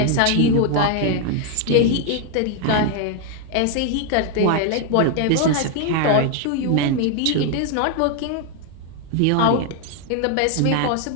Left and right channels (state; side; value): different; both; correlation 0.00